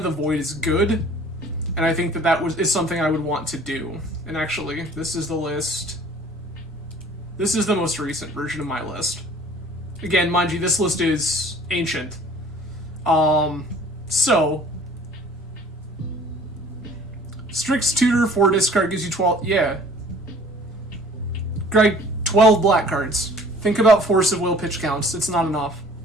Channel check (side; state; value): both; normal; correlation 0.51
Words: the Void is good, and I think that is something I would want to do. And actually, this is the list. This is the most recent version of my list. Again, mind you, this list is ancient. So... Strix Tutor, 4 discard gives you 12... Yeah. Greg, 12 black cards. Think about Force of Will pitch counts. It's not enough.